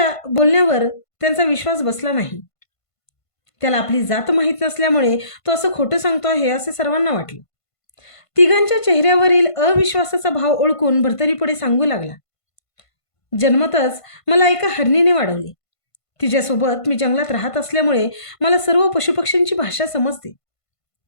त्यांचा विश्वास बसला नाही. त्याला आपली जात माहीत नसल्यामुळे तो असं खोटं सांगतो आहे असे सर्वांना वाटले. तिघांच्या चेहऱ्यावरील अविश्वासाचा भाव ओळखून भर्तरी पुढे सांगू लागला, जन्मतच मला एका हरणीने वाढवले. तिच्यासोबत मी जंगलात राहत असल्यामुळे मला सर्व पशुपक्ष्यांची भाषा समजते.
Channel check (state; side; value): late; right; 1.5 ms